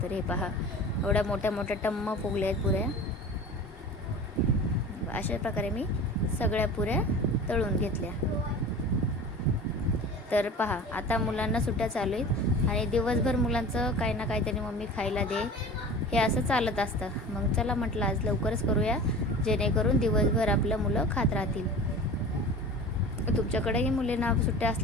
तर हे पहा एवढ्या मोठ्या मोठ्या टम्म फुगल्या आहेत पुऱ्या. अशा प्रकारे मी सगळ्या पुऱ्या तळून घेतल्या. तर पहा आता मुलांना सुट्ट्या चालू आहेत आणि दिवसभर मुलांचं काही ना काहीतरी मम्मी खायला दे हे असं चालत असतं. मग चला म्हटलं आज लवकरच करूया, जेणेकरून दिवसभर आपलं मुलं खात राहतील. तुमच्याकडेही मुलींना सुट्ट्या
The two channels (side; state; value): both; normal; correlation 0.37